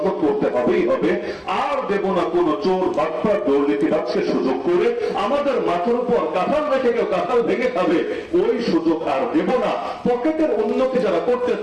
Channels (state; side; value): identical; both; correlation 1.00